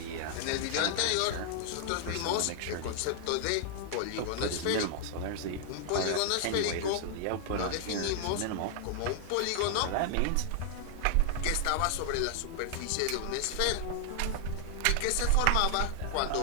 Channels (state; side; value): different; both; correlation 0.00